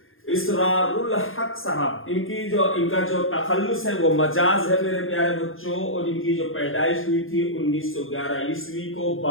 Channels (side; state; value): right; late; 0.60 ms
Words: इसरारुल हक साहब, इनका जो तखल्लुस है वो मजाज है मेरे प्यारे बच्चों। और इनकी जो पैदाइश हुई थी 1911 ईस्वी को